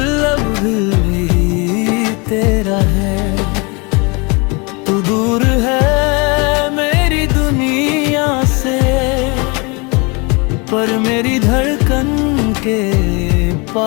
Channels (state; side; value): quieter; right; 29.4 dB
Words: अब भी तेरा है। तू दूर है मेरी दुनिया से, पर मेरी धड़कन के